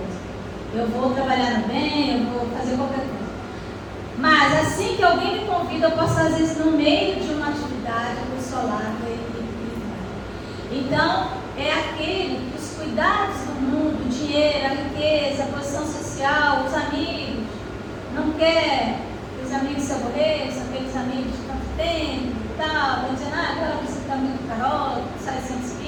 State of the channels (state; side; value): identical; both; correlation 1.00